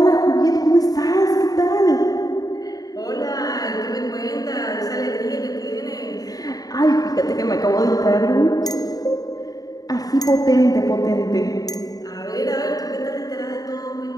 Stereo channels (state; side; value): late; right; 0.18 ms